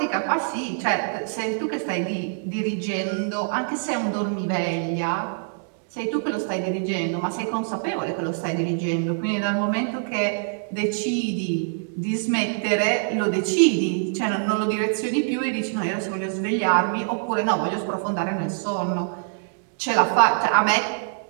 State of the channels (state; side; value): silent; left; digital silence